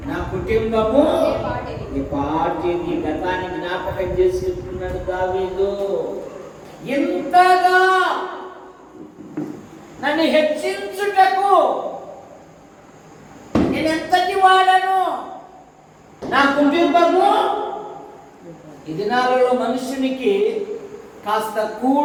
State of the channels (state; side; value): identical; both; correlation 1.00